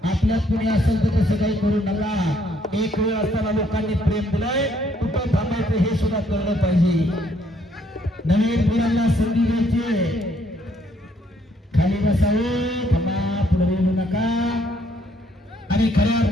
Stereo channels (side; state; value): both; normal; correlation 0.68